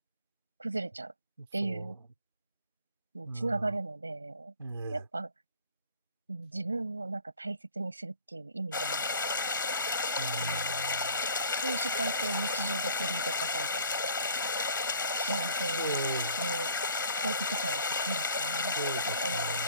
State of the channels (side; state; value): both; inverted; correlation -0.50